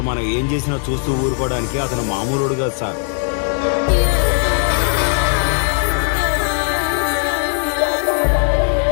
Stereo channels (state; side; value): silent; right; 58 dB below the other